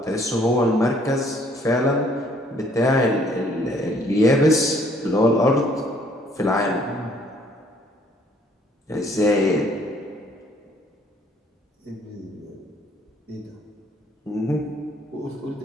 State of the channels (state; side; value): normal; both; correlation 0.62